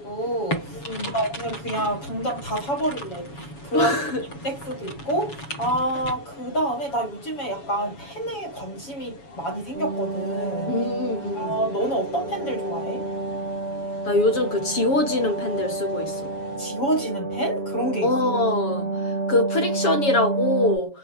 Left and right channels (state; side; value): late; right; 7.1 ms